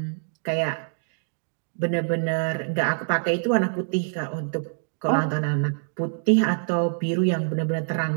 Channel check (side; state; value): left; silent; digital silence